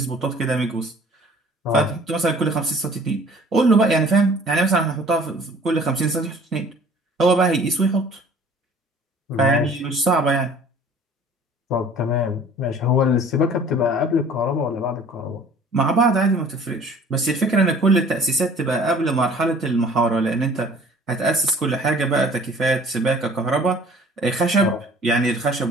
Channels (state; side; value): normal; both; correlation 0.50